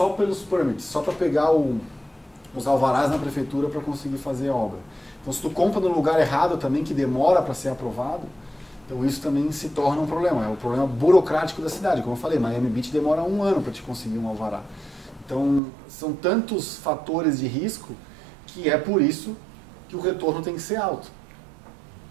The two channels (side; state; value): left; drops out; at 15.6 s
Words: pelos permits, só para pegar os alvarás na prefeitura para conseguir fazer a obra. Então se tu compra no lugar errado também, que demora para ser aprovado, então isso também se torna um problema. É um problema burocrático da cidade. Como eu falei, Miami Beach demora 1 ano para te conseguir um alvará. Então são tantos fatores de risco que é por isso que o retorno tem que ser alto.